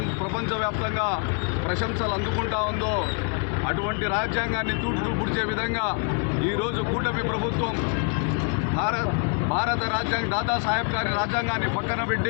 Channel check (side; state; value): right; quieter; 35.6 dB